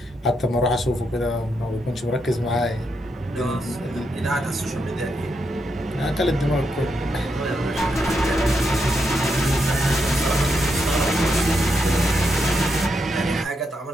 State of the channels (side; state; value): both; normal; correlation 0.81